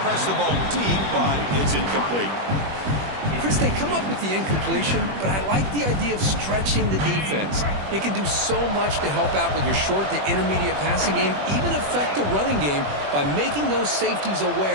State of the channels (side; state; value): left; late; 21 ms